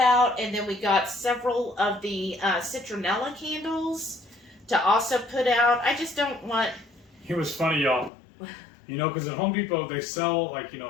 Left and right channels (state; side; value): drops out; right; at 8.1 s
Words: And then we got several of the citronella candles to also put out. I just don't want... It was funny, y'all. Because at Home Depot, they sell,